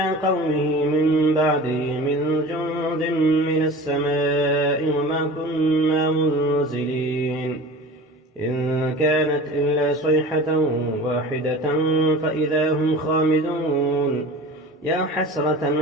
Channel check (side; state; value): both; normal; correlation 0.37